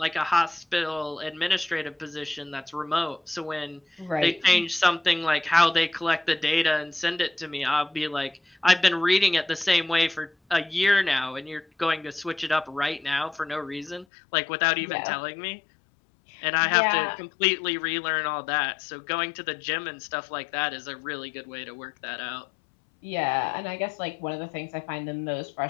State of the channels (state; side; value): drops out; right; at 14.1 s